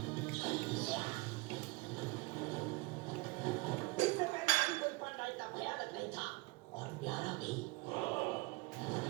इससे पहले कोई पांडा इतना भयानक नहीं था और प्यारा भी,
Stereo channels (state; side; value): quieter; left; 23.9 dB